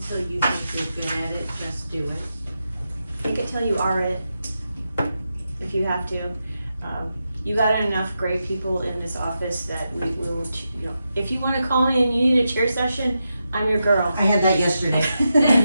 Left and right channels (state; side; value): inverted; both; correlation -0.88